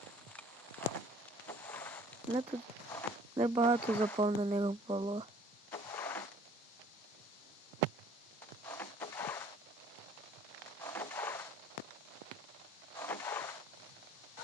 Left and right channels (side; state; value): both; normal; correlation 0.54